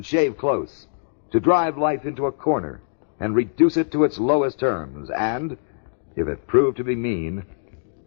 shave close, to drive life into a corner and reduce it to its lowest terms, and, if it proved to be mean,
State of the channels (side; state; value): right; silent; digital silence